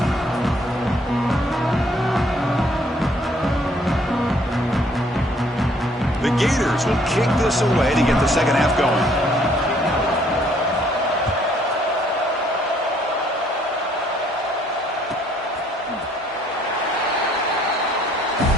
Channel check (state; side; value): normal; both; correlation 0.64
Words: The Gators will kick this away to get the second half going.